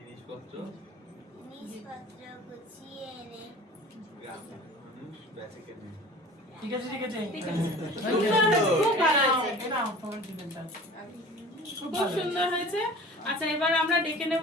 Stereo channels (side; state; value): both; normal; correlation 0.42